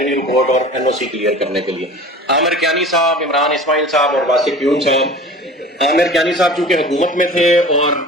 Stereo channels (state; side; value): normal; both; correlation 0.40